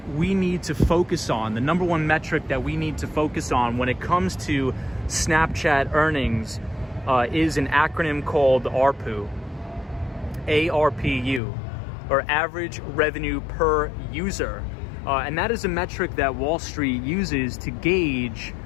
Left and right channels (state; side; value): drops out; right; at 11.4 s